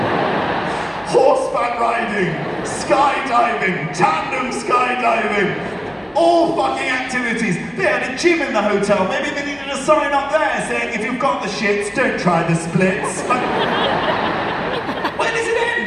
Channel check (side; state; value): both; identical; correlation 1.00